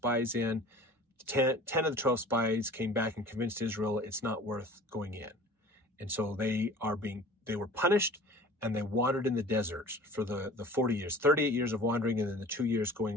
in. 10 of the 12 spies came back and convinced Israel it's not worth going in. And so they were punished, and they wandered in the desert for the 40 years, 38 years of wandering, and then the 2 years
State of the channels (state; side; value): normal; both; correlation 0.43